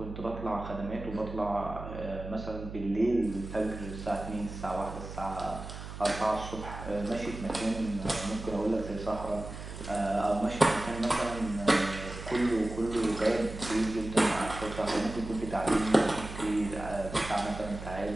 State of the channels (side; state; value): right; noise; hum, 10 dB below the sound